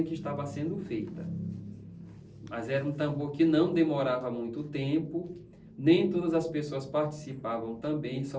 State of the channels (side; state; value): both; identical; correlation 1.00